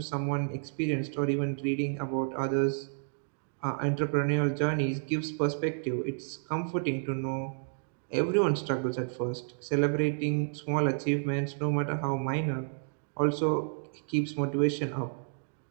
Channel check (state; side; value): silent; left; digital silence